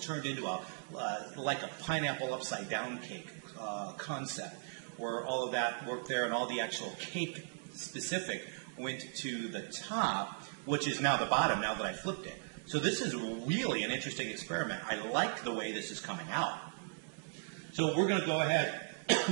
turned into like a pineapple upside down cake concept, where all of that worked there and all the actual cake specific went to the top, which is now the bottom now that I flipped it. So this is really an interesting experiment. I like the way this is coming out. So we're going to go ahead,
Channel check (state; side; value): silent; left; digital silence